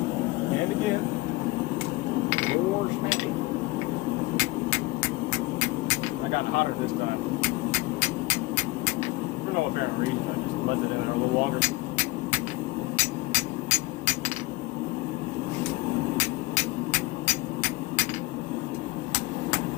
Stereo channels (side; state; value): right; quieter; 20.9 dB